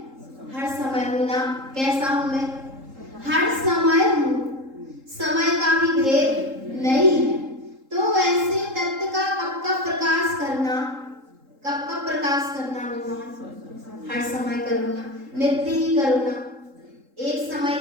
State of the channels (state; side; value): late; left; 3.8 ms